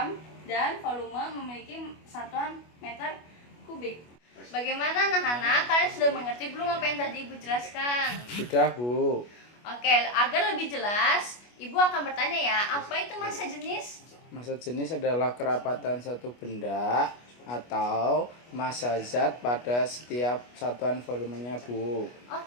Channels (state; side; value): late; right; 25 ms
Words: dan volume memiliki satuan meter kubik. Bagaimana anak-anak? Kalian sudah mengerti belum apa yang tadi Ibu jelaskan? Sudah, Bu. Oke, agar lebih jelas, Ibu akan bertanya ya, apa itu massa jenis? Massa jenis adalah kerapatan satu benda atau massa zat pada setiap satuan volumenya, Bu.